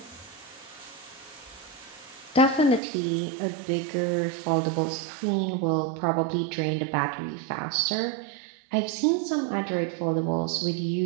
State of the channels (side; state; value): left; drops out; at 2.8 s